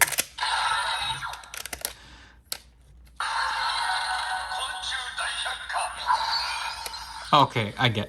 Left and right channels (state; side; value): identical; both; correlation 1.00